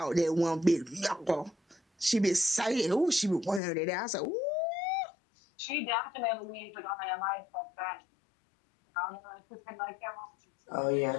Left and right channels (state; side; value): drops out; right; at 3.6 s